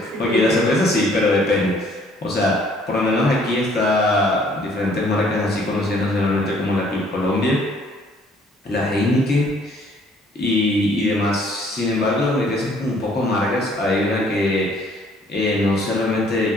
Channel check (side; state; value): both; normal; correlation 0.61